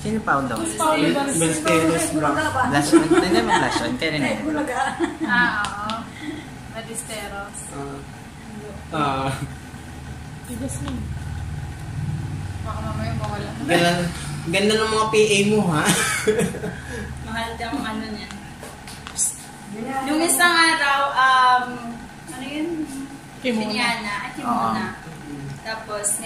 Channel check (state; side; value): identical; both; correlation 1.00